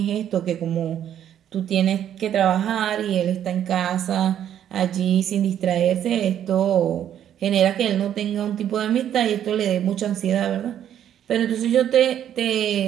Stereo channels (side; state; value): left; quieter; 10.2 dB